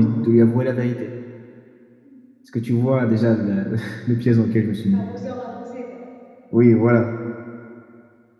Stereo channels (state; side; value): identical; both; correlation 1.00